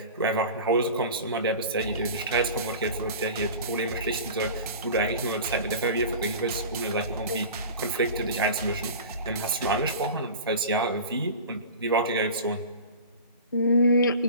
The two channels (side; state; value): both; inverted; correlation -0.36